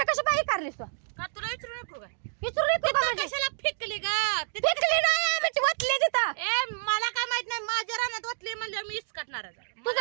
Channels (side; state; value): left; silent; digital silence